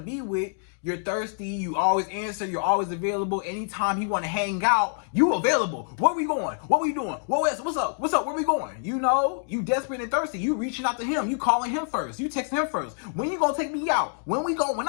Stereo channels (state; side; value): silent; right; digital silence